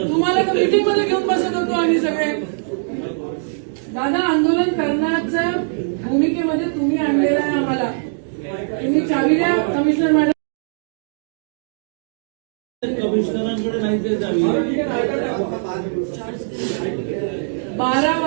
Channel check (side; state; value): left; silent; digital silence